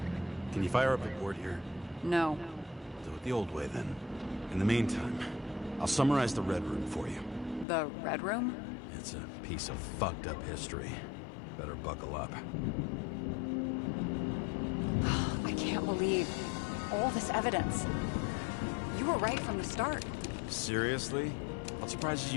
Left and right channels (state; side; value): drops out; right; at 7.7 s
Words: Can you fire up a board here? No. Do it the old way then. In the meantime, I'll summarize the Red Room for you. The Red Room? It's a piece of fucked up history. Better buckle up. I can't believe all this evidence. You were right from the start. Seriously? What surprises